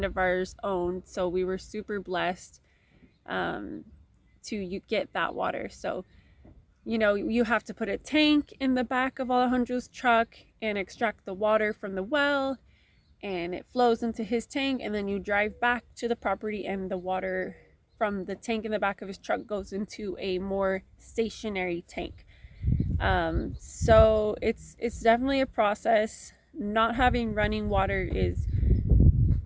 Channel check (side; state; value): both; identical; correlation 1.00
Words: of ours owned. So we were super blessed to get that water. So, you know, you have to put a tank in the back of Alejandro's truck and extract the water from the well, and it flows into his tank, and then you drive back to the property, and the water from the tank in the back of his truck goes into a more stationary tank. So it's definitely a process. Not having running water is